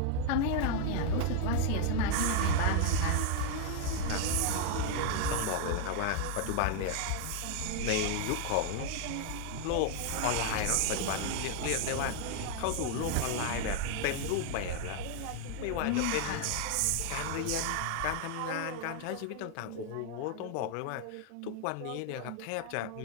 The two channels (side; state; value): both; different; correlation 0.00